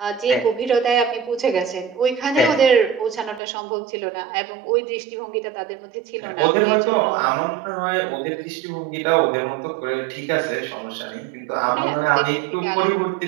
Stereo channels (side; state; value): left; drops out; at 3.4 s